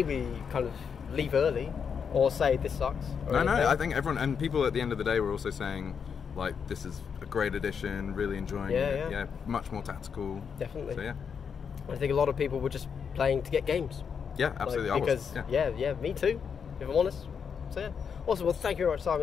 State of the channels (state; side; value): quieter; right; 6.7 dB